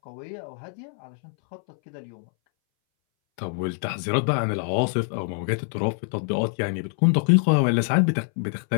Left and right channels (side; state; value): right; silent; 60 dB below the other